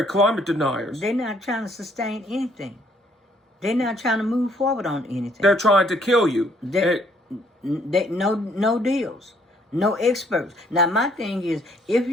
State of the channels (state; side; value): normal; both; correlation 0.65